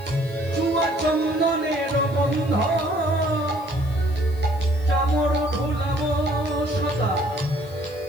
চুয়া চন্দনের গন্ধ, চামর ঢুলাব সদা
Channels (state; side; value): noise; left; hiss, 24 dB below the sound